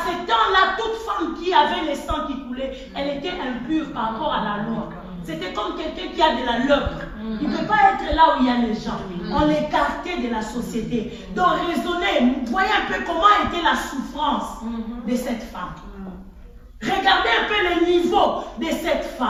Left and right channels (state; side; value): identical; both; correlation 1.00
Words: ce temps-là, toute femme qui avait le sang qui coulait, elle était impure par rapport à la loi. C'était comme quelqu'un qui a de la lèpre. Il ne peut pas être là où il y a les gens. On l'écartait de la société. Donc raisonnez, voyez un peu comment était la souffrance de cette femme. Regardez un peu le niveau de cette